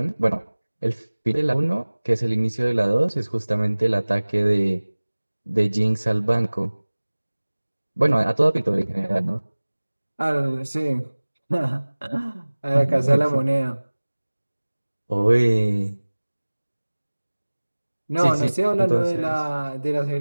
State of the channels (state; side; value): inverted; both; correlation -1.00